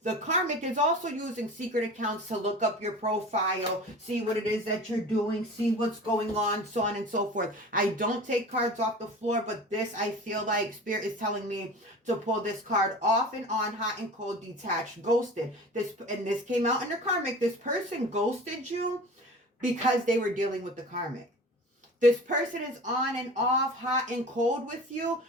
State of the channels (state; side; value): normal; both; correlation 0.37